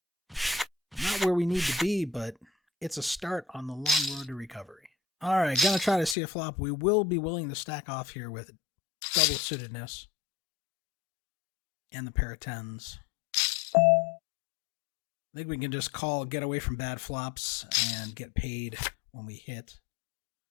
Not where we need to be, but it's a start on the long road to recovery. All right, gonna try to see a flop. We will be willing to stack off here with double suitedness and the pair of 10s. I think we can just get away from bad flops and get paid when we hit.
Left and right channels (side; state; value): right; drops out; at 6.2 s